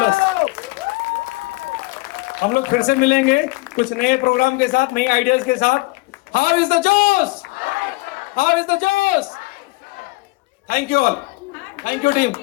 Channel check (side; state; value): right; quieter; 23.8 dB